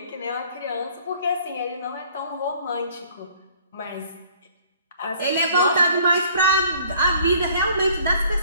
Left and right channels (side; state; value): both; inverted; correlation -0.56